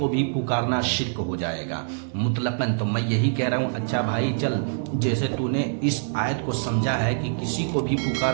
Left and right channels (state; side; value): silent; left; 62 dB below the other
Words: भी पुकारना शिर्क हो जाएगा मुतलकन, तो मैं यही कह रहा हूँ, अच्छा भाई चल, जैसे तूने इस आयत को समझा है कि किसी को भी